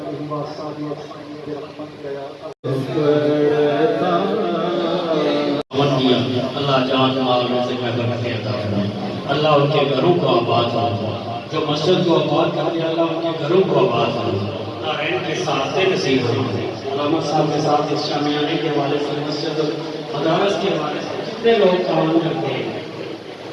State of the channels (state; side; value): identical; both; correlation 1.00